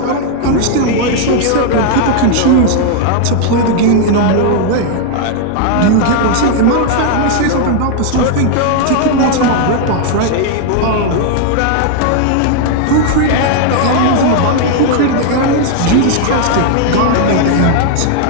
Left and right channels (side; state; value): both; different; correlation 0.00